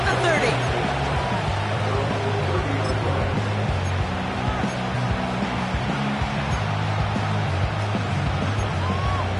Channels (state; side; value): identical; both; correlation 1.00